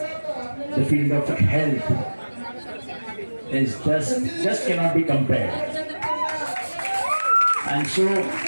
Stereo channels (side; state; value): both; inverted; correlation -1.00